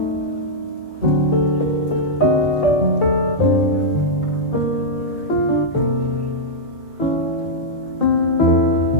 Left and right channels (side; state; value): right; late; 3.0 ms